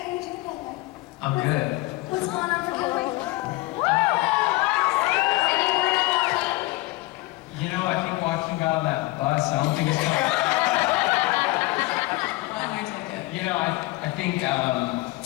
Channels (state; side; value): quieter; right; 20.8 dB